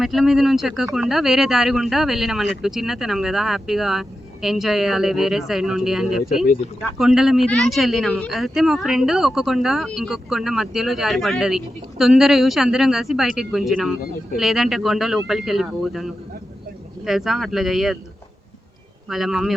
మెట్ల మీద నుంచి ఎక్కకుండా వేరే దారి గుండా వెళ్ళినాం అన్నట్టు. చిన్నతనం కదా, హ్యాపీగా ఎంజాయ్ చేయాలి వేరే సైడ్ నుండి అని చెప్పి కొండల మీద నుంచి వెళ్ళినాము. అయితే మా ఫ్రెండ్ ఒక కొండ ఇంకొక కొండ మధ్యలో జారిపడ్డది. తొందర చూసి అందరం కలిసి బయటికి గుంజినాము, లేదంటే కొండ లోపలికి వెళ్ళిపోతాను తెలుసా. అట్లా చెయ్యొద్దు, వాళ్ళ మమ్మీ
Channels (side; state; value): both; normal; correlation 0.90